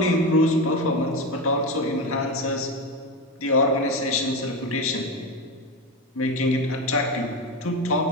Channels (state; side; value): normal; both; correlation 0.18